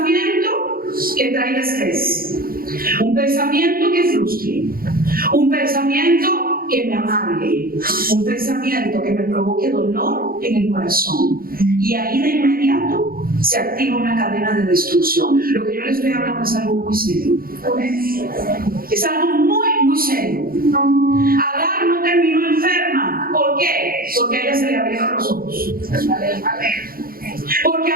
que traiga estrés. Un pensamiento que frustre. Un pensamiento que me amargue. Un pensamiento que me provoque dolor en el corazón. Y ahí de inmediato se activa una cadena de destrucción. Lo que yo le estoy hablando es algo muy serio. Es algo muy, muy serio. Agar no terminó enferma. ¿Por qué? Porque a ella se le abrieron los ojos. Porque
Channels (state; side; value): late; left; 0.42 ms